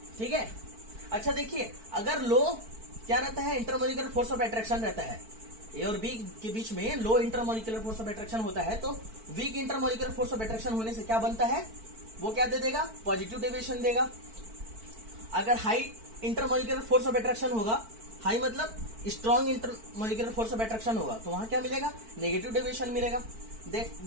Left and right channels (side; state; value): left; late; 4.5 ms